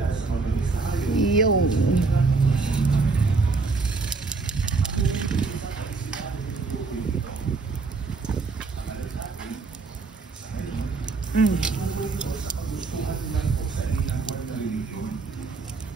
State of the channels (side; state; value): left; quieter; 4.1 dB